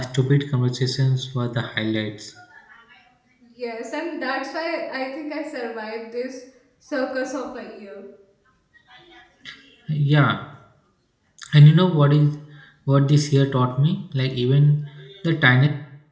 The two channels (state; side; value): identical; both; correlation 1.00